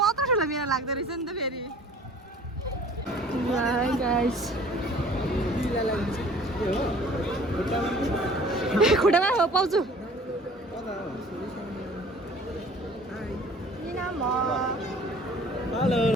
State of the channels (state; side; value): normal; both; correlation 0.49